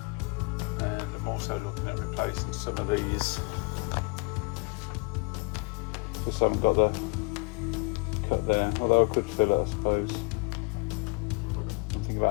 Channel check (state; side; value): quieter; right; 30.8 dB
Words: And I'm also looking at replacing some of these. Just haven't got the cut there, although I could fill it, I suppose. I'm thinking